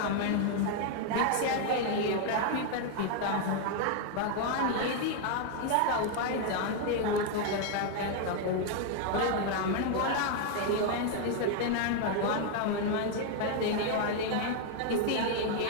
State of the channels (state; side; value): different; both; correlation 0.00